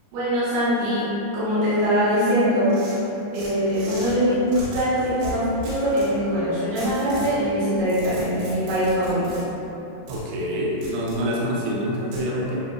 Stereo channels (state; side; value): late; left; 29 ms